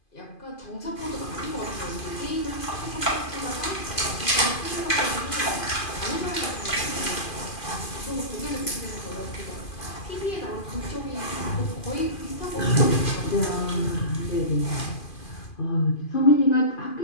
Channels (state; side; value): late; right; 2.5 ms